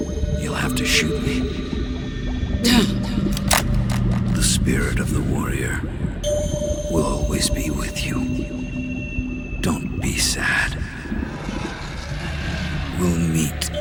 you'll have to shoot me. The spirit of the warrior will always be with you. Don't be sad. We'll meet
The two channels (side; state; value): both; identical; correlation 1.00